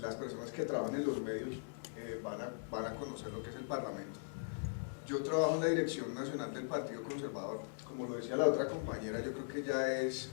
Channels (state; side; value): silent; right; digital silence